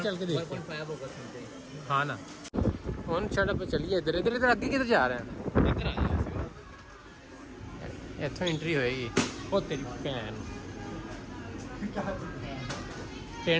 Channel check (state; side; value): identical; both; correlation 1.00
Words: चल के देखते हैं। 1.5 होगा समथिंग। हाँ ना, कौन सड़क पे चलिए, इधर इधर इधर आगे किधर जा रहे हैं? इधर आ जाओ। इतों एंट्री होएगी। ओ तेरी भैन